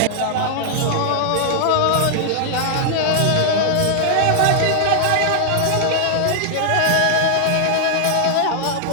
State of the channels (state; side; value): different; both; correlation -0.01